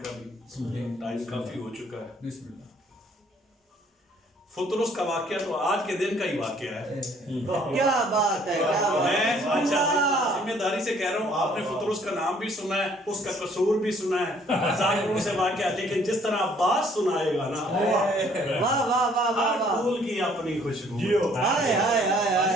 کا بھی ٹائم کافی ہو چکا ہے۔ بسم اللہ۔ فطرس کا واقعہ تو آج کے دن کا ہی واقعہ ہے، کیا بات ہے کیا بات میں ہے ذمہ داری سے کہہ رہا ہوں، آپ نے فطرس کا نام بھی سنا ہے، اس کا قصور بھی سنا ہے، ظاہروں سے واقعہ، لیکن جس طرح عباس سنائے گا نا، واہ واہ واہ واہ ہر واہ پھول کی اپنی خوشبو، ہائے ہائے ہائے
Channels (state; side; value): normal; both; correlation 0.61